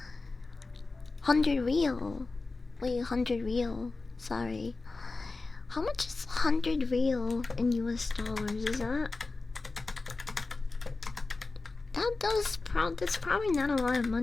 100 real. Wait, 100 real. Sorry. How much is 100 real in US dollars? Is that's probably not a lot of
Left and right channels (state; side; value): quieter; right; 3.6 dB